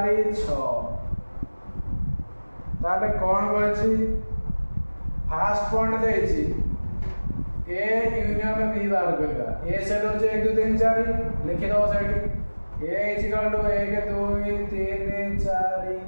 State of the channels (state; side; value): inverted; both; correlation -1.00